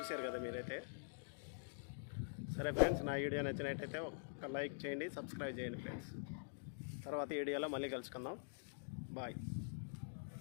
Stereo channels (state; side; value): silent; right; digital silence